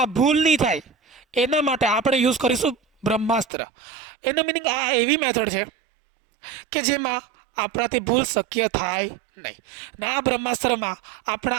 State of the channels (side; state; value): left; drops out; at 3.5 s